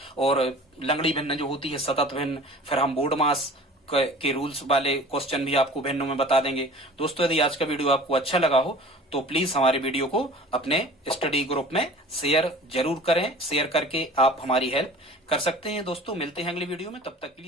और लंगड़ी भिन्न जो होती है सतत भिन्न, फिर हम बोर्ड मास के रूल्स वाले क्वेश्चन भी आपको भिन्नों में बता देंगे। दोस्तों यदि आज का वीडियो आपको अच्छा लगा हो तो प्लीज हमारे वीडियो को अपने स्टडी ग्रुप में शेयर जरूर करें। शेयर करके आप हमारी हेल्प कर सकते हैं। दोस्तों मिलते हैं अगली वीडियो में, तब तक के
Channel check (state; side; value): normal; both; correlation 0.43